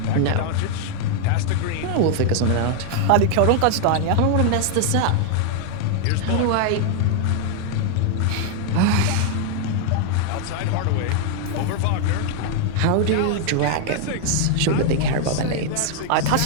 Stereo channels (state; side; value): different; both; correlation 0.00